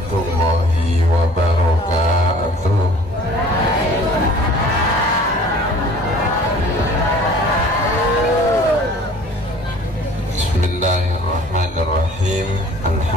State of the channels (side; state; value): both; normal; correlation 0.50